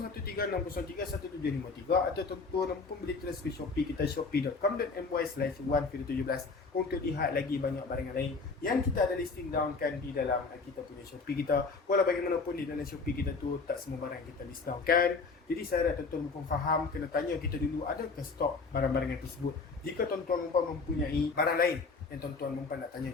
atau tuan-tuan dan puan boleh terus ke Shopee kita shopee.com.my/1video17 untuk lihat lagi banyak barangan lain yang kita ada listing down kan di dalam kita punya Shopee kita. Walau bagaimanapun di dalam Shopee kita tu tak semua barang kita list down kan. Jadi saya harap tuan-tuan dan puan faham, kena tanya kita dulu adakah stok barang-barangan tersebut. Jika tuan-tuan dan puan mempunyai barang lain yang tuan-tuan perempuan nak tanya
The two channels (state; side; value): quieter; right; 4.4 dB